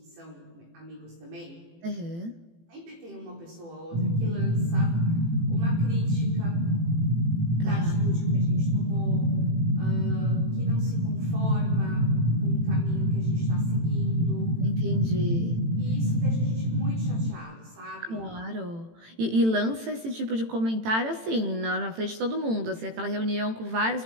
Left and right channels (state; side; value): late; left; 18 ms